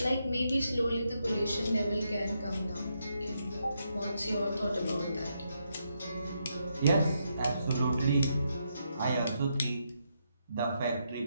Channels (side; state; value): both; inverted; correlation -0.80